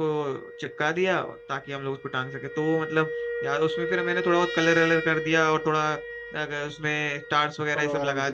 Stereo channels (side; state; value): both; identical; correlation 1.00